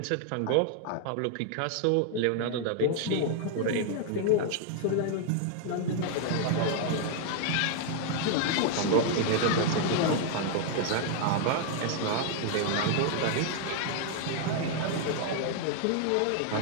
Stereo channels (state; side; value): different; both; correlation 0.00